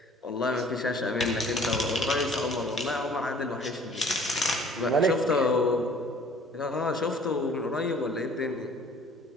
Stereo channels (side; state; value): both; normal; correlation 0.53